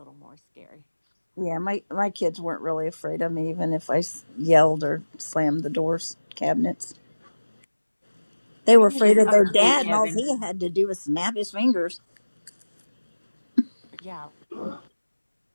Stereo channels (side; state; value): both; inverted; correlation -1.00